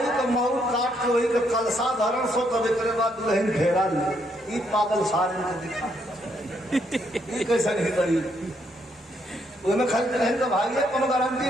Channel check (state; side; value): normal; both; correlation 0.74